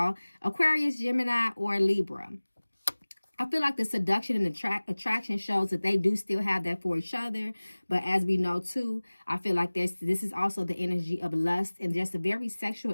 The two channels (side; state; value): both; inverted; correlation -1.00